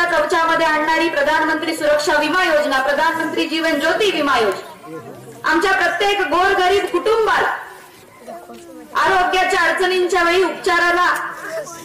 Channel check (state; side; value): identical; both; correlation 1.00